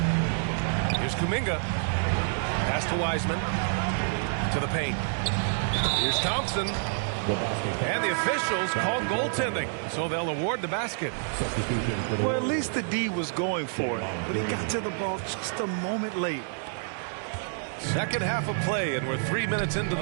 Here's Kuminga. Pass to Wiseman. To the paint. Here's Thompson. And the officials called goaltending, so they'll award the basket. Well, at least the D was going for it, but he got to the ball just a moment late. Second half of play, and we're 3 minutes into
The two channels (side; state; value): left; silent; digital silence